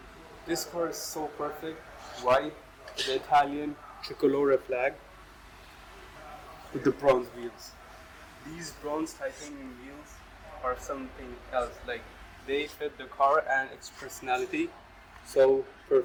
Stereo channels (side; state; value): both; identical; correlation 1.00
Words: This car is so perfect. White with the Italian tricolore flag with the bronze wheels. These bronze titanium wheels are something else. Like, they fit the car and its personality so